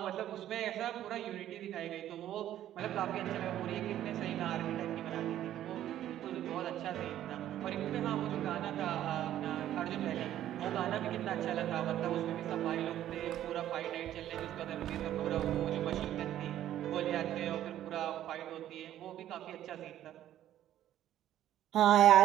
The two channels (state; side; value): quieter; left; 12.1 dB